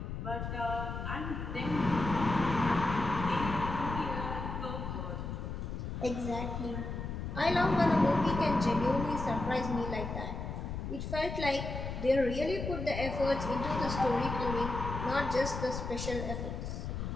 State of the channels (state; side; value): noise; left; rumble, 5 dB below the sound